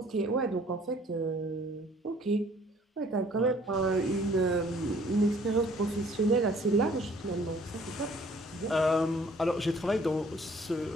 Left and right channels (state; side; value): normal; both; correlation 0.57